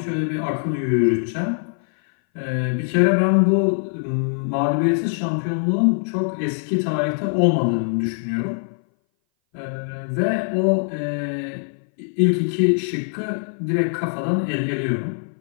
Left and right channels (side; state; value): right; silent; 59 dB below the other